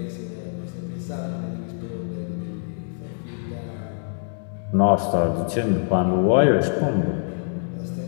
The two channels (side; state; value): right; silent; digital silence